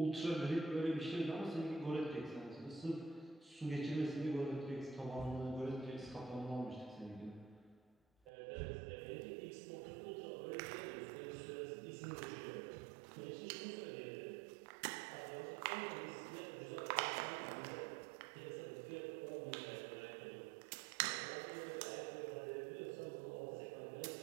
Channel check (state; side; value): drops out; left; at 8.3 s